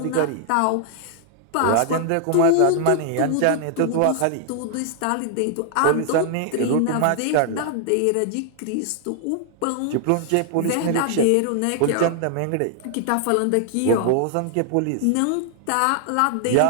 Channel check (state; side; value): different; both; correlation 0.00